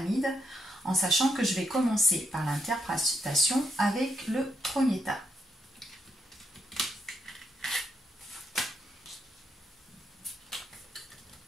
en sachant que je vais commencer par l'interprétation avec le premier tas.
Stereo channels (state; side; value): normal; both; correlation 0.79